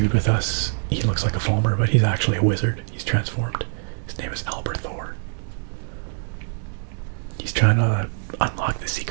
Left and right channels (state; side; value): silent; left; 62 dB below the other